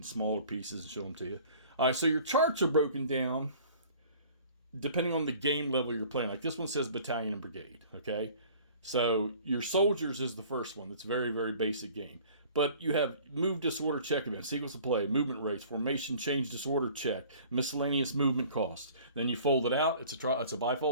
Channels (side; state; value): both; inverted; correlation -0.49